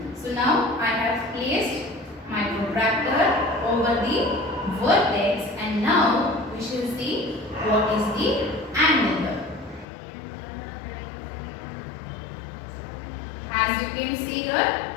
So now I have placed my protractor over the vertex and now we shall see what is the angle here. As you can see here,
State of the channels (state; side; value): drops out; right; at 9.9 s